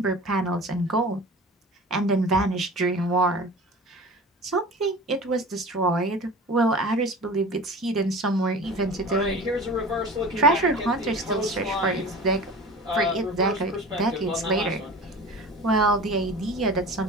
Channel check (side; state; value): both; normal; correlation 0.37